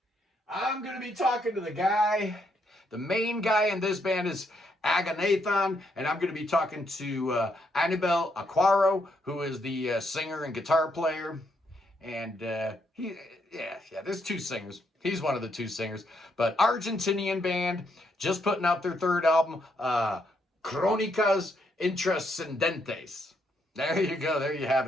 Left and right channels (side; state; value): both; normal; correlation 0.76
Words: I'm going to be talking to the guy. The main guy in this band is Aganathan, and I'm going to be talking to Anibal Aquaro, who is the singer and guitar player. And there's 2 singers. He's one of the 2 singers. But Argentinian band, just putting out their 3rd album, Crónicas Intrascendentes. There you go. There you have